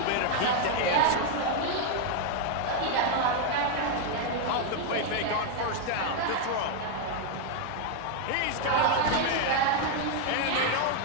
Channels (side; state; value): both; different; correlation 0.00